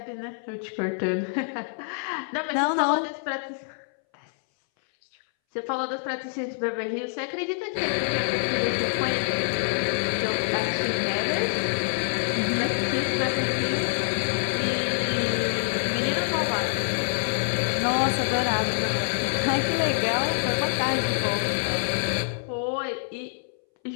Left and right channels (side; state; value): right; silent; 61 dB below the other